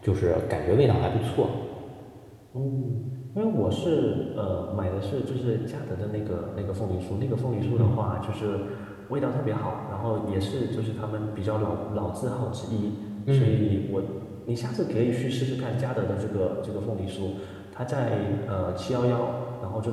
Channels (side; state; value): both; identical; correlation 1.00